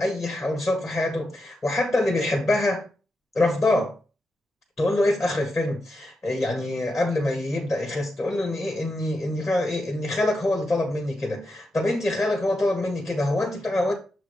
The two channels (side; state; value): both; normal; correlation 0.87